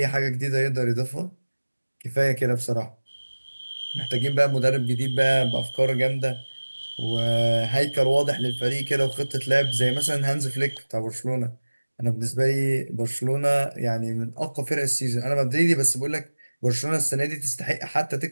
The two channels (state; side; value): inverted; both; correlation -1.00